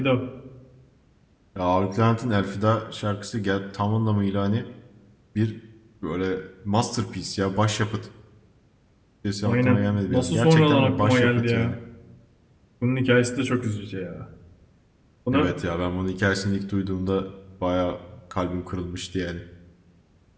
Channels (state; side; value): identical; both; correlation 1.00